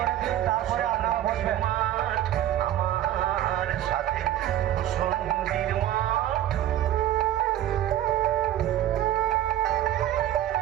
দিন, তারপরে আপনারা বসবেন। মাঠ, আমার সাথে ভূষণ্ডির মাঠ।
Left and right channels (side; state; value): left; quieter; 12.3 dB